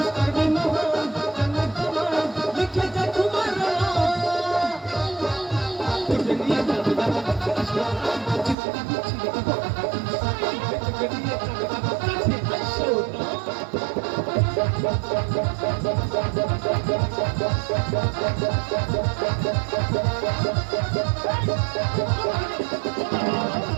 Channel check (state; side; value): drops out; left; at 8.6 s